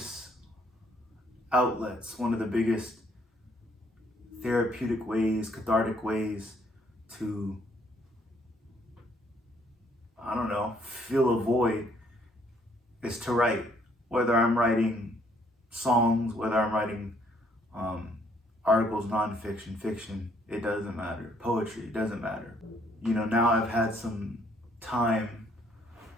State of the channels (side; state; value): both; normal; correlation 0.66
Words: outlets, one of the biggest therapeutic ways, cathartic ways to, I don't know, fill a void is to write. Whether I'm writing songs, whether I'm writing articles, nonfiction, fiction, it doesn't matter. Poetry, it doesn't matter. You know, now I've had some time,